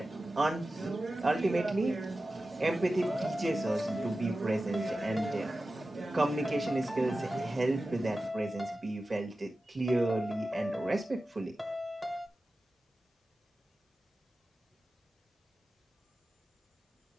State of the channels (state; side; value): normal; both; correlation 0.94